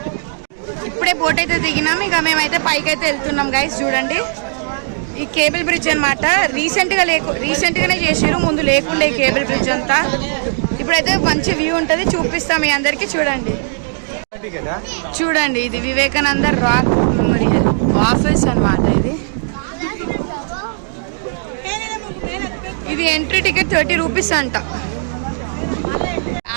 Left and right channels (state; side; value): silent; left; digital silence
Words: ఇప్పుడే బోట్ అయితే దిగినాం. ఇక మేమైతే పైకి అయితే వెళ్తున్నాం గైస్. చూడండి ఈ కేబుల్ బ్రిడ్జ్ అనమాట. రీసెంట్గానే చేసారు, ముందు లేకుండే ఈ కేబుల్ బ్రిడ్జ్ అంతా. ఇప్పుడైతే మంచి వ్యూ ఉంటుంది, చూపిస్తాం మీ అందరికి. చూడండి ఇది వివేకానంద రాక్ మెమోరియల్ ఆఫీస్ అనమాట. ఇది ఎంట్రీ టికెట్ 30 రూపీస్ అంట.